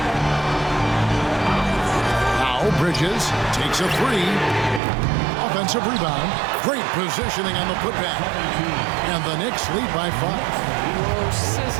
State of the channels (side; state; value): left; drops out; at 4.8 s